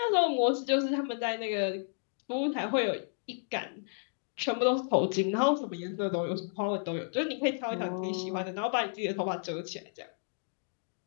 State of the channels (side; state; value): right; silent; digital silence